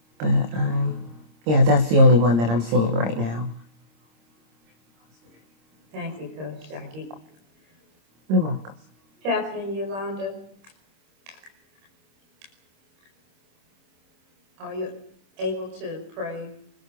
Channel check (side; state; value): left; late; 26 ms